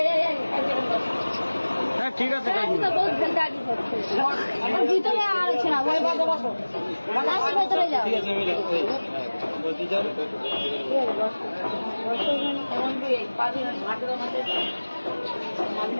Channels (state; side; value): inverted; both; correlation -1.00